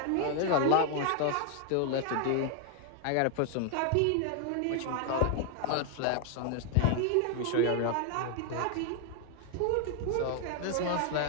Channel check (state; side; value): different; both; correlation 0.00